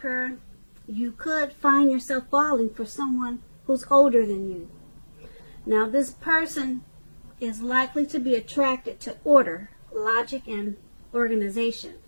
you could find yourself falling for someone who's older than you. Now this person is likely to be attracted to order, logic, and organization.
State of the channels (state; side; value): inverted; both; correlation -1.00